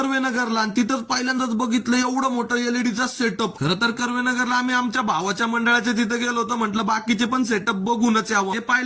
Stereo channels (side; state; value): both; identical; correlation 1.00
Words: आणि तिथंच पहिल्यांदाच बघितलं एवढं मोठं एलईडीचा सेटअप. खरं तर कर्वेनगरला आम्ही आमच्या भावाच्या मंडळाच्या तिथे गेलो होतो. म्हटलं बाकीचे पण सेटअप बघूनच यावं. हे